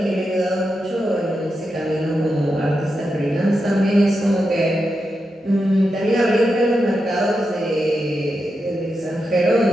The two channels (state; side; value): normal; both; correlation 0.87